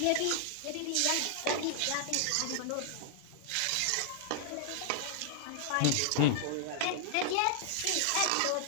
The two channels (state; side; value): different; both; correlation 0.00